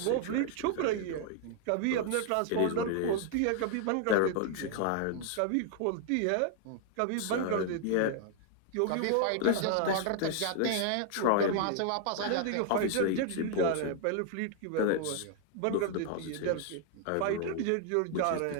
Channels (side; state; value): both; different; correlation 0.00